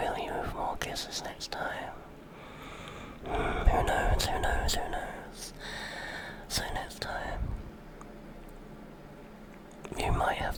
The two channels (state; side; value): identical; both; correlation 1.00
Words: you with more kisses next time. Who knows? So next time, you might have